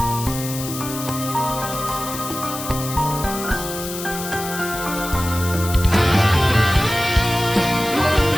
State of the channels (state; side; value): noise; left; hiss, 8 dB below the sound